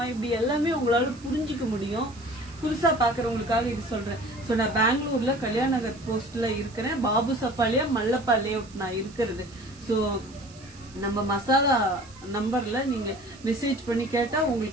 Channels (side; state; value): right; noise; hiss, 23 dB below the sound